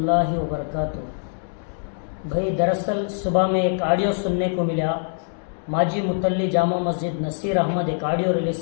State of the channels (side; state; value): right; silent; digital silence